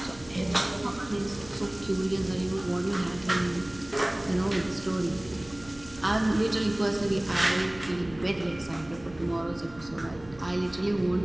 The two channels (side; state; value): right; noise; hum, 21 dB below the sound